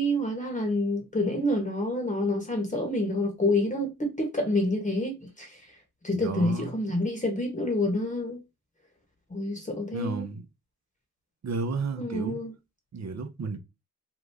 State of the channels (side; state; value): both; normal; correlation 0.55